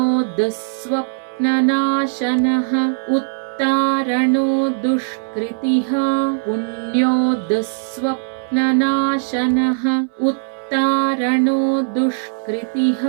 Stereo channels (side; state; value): left; silent; 62 dB below the other